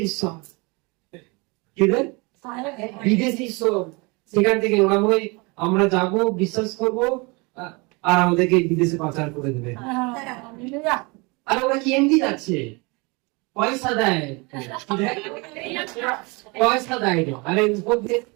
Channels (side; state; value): left; quieter; 28.0 dB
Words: ঈশ্বর, কি রে বিদেশি ঈশ্বর। সেখান থেকে ওরা বলে আমরা যাবো, বিশ্বাস করবো, আর আমাদেরকে বিদেশে পাচার করে দেবে। আর ওরা কি এমনি যাচ্ছে, পয়সা দেয়, পয়সা দেয়। আরে